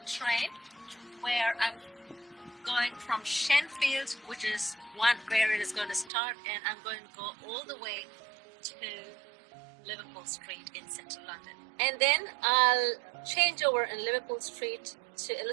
train where I'm going from Shenfield, which is where it is going to start, and I'm going to go all the way to Liverpool Street in central London. And then I'll change over in Liverpool Street to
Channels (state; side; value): drops out; left; at 6.1 s